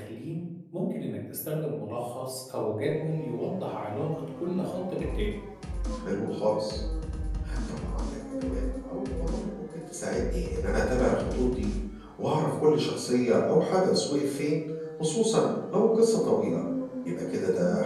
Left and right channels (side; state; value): both; identical; correlation 1.00